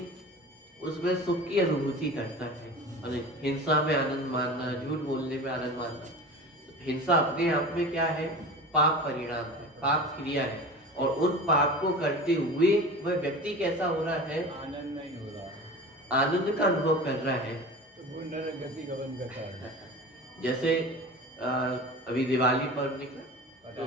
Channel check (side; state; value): both; normal; correlation 0.34